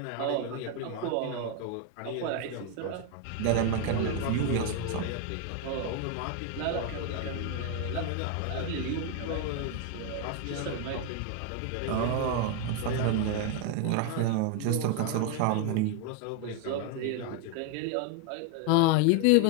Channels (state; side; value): different; both; correlation 0.01